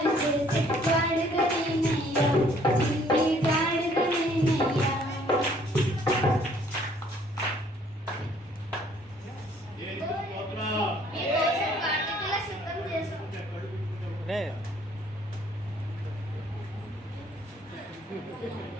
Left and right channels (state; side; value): normal; both; correlation 0.61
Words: చేసి గాడిద నేనయ్యా, చిన్ని గాడిద నేనయ్యా.